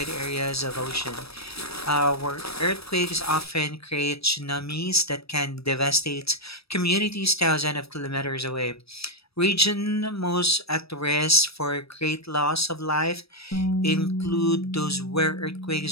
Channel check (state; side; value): late; right; 0.78 ms